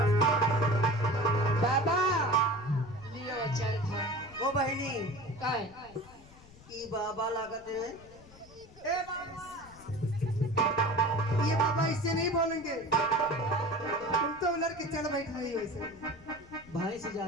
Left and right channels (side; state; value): left; noise; rumble, 22 dB below the sound